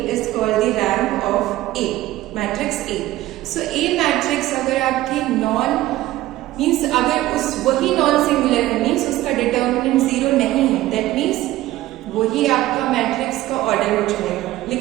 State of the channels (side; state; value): left; quieter; 15.9 dB